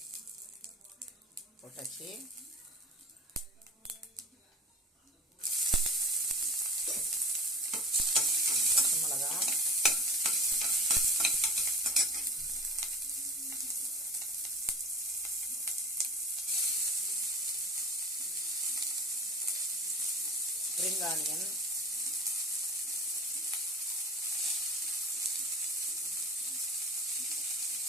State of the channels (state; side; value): normal; both; correlation 0.36